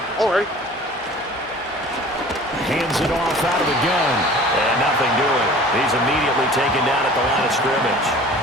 All right. Hands it off out of the gun. And nothing doing. He's immediately taken down at the line of scrimmage.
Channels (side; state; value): both; normal; correlation 0.45